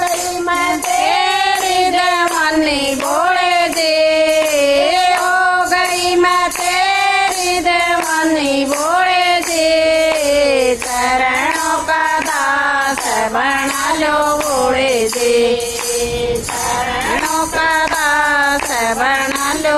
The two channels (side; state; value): both; identical; correlation 1.00